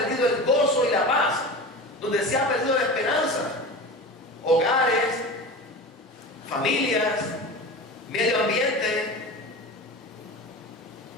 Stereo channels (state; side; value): normal; both; correlation 0.31